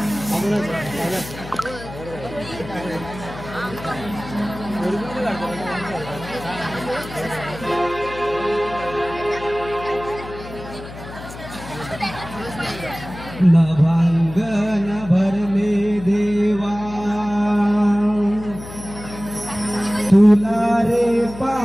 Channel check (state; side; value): noise; left; hum, 13 dB below the sound